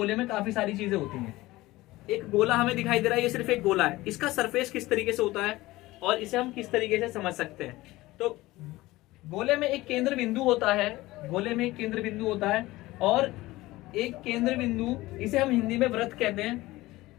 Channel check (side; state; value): right; quieter; 18.7 dB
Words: में काफी सारी चीजें होती हैं। एक गोला हमें दिखाई दे रहा है, ये सिर्फ एक गोला है। इसका सरफेस किस तरीके से होता है और इसे हम किस तरीके से समझ सकते हैं। तो गोले में एक केंद्र बिंदु होता है, गोले में एक केंद्र बिंदु होता है और एक केंद्र बिंदु, इसे हम हिंदी में वृत्त कहते